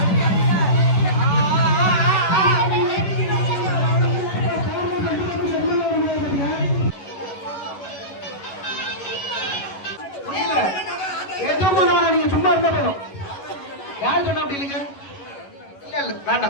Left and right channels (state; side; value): late; right; 11 ms